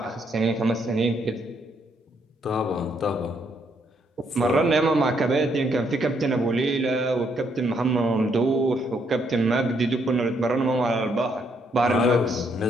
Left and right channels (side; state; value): both; normal; correlation 0.73